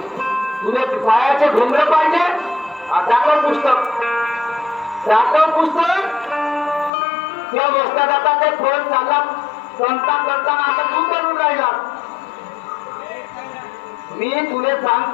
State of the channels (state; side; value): drops out; right; at 6.9 s